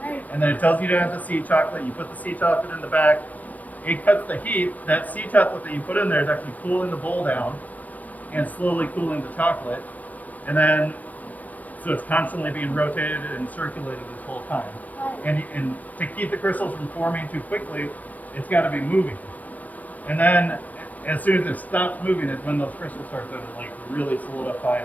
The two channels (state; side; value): late; right; 0.076 ms